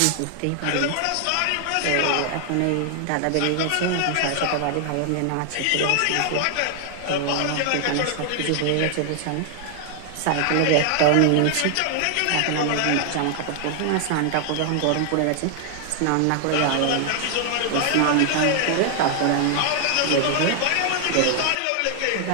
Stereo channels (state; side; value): different; both; correlation 0.00